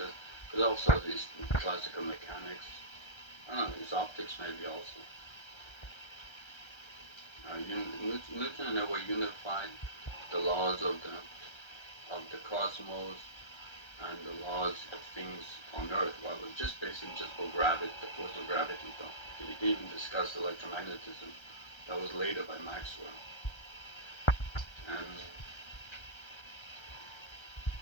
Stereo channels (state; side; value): late; right; 1.3 ms